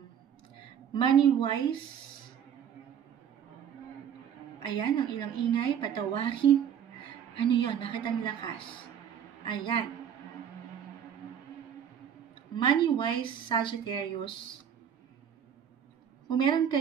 Money-wise, ayan, ang ilang ingay, patawarin. Ano yun? Bakit ang lakas? Ayan. money-wise, Sagittarius, kung meron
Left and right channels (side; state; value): left; quieter; 8.7 dB